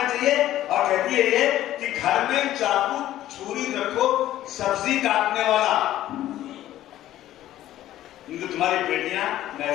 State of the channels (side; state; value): right; quieter; 13.5 dB